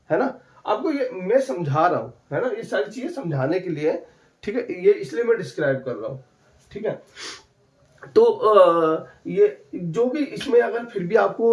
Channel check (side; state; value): both; identical; correlation 1.00